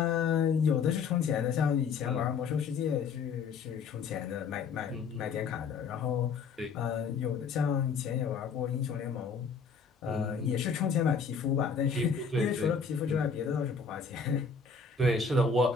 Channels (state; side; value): quieter; right; 5.4 dB